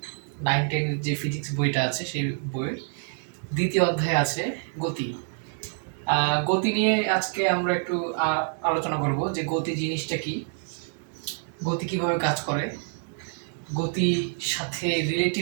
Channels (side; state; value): left; silent; 55 dB below the other